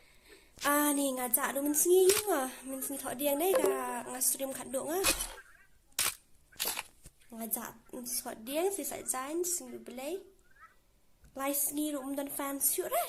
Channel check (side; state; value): both; identical; correlation 1.00